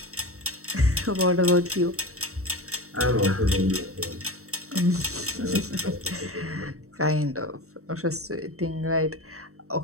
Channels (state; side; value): late; left; 0.64 ms